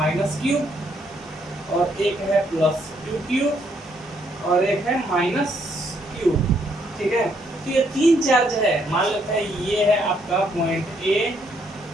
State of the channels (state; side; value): normal; both; correlation 0.72